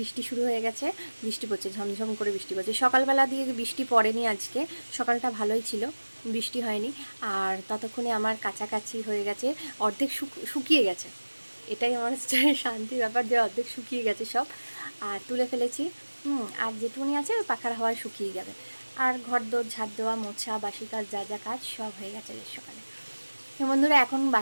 শুরু হয়ে গেছে। বৃষ্টি পড়ছে, ঝমঝম করে বৃষ্টি পড়ছে। সকালবেলা দিয়ে বৃষ্টি পড়েনি আজকে, সকালটা ভালোই ছিল, বৃষ্টি হয়নি। আর ততক্ষণে আমার কাছাকাছি হয়ে গেছে, অর্ধেক শুকিয়ে গেছে। এটাই আমার শান্তির ব্যাপার যে অর্ধেক শুকিয়ে গেছে সব, আর তুলে ফেলেছি। আর যেটুকুনি আছে ওই পাখার হাওয়ায় শুকিয়ে যাবে। আর ঘর দোর ঝাড় দেওয়া, মোছা, বাসি কাজ, যা যা কাজ সব হয়ে গেছে সকালে। তো বন্ধুরা, এখন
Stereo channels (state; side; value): inverted; both; correlation -1.00